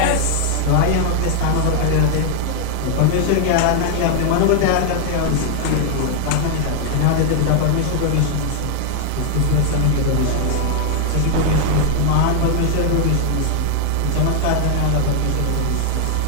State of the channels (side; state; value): both; different; correlation 0.00